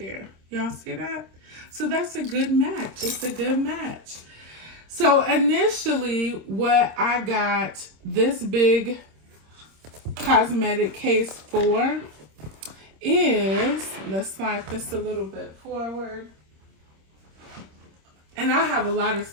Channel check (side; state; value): left; late; 26 ms